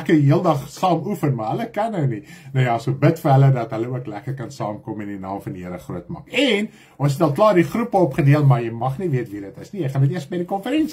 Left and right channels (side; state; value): both; identical; correlation 1.00